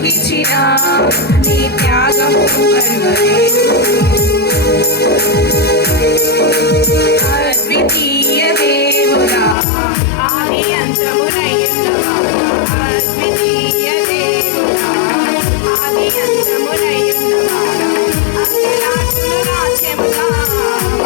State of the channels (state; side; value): drops out; right; at 9.6 s